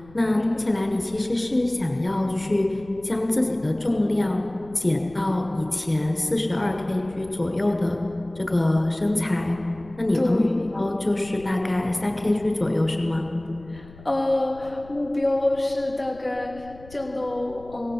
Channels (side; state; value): left; noise; rumble, 21 dB below the sound